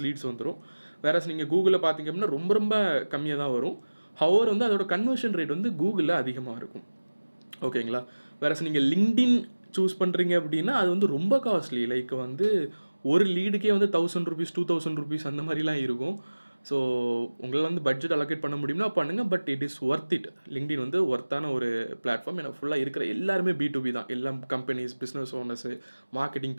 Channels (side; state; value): both; inverted; correlation -1.00